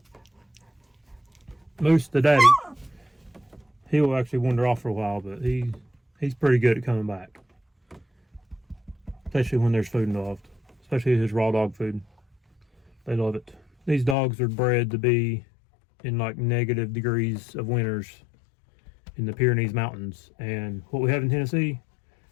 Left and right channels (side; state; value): right; drops out; at 14.2 s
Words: Moose, the daddy, he will actually wander off for a while, but he's pretty good at coming back. Especially when there's food involved. Especially his raw dog food. They love it. These dogs are bred to be in like negative degrees of winters in the Pyrenees Mountains. And what we have in Tennessee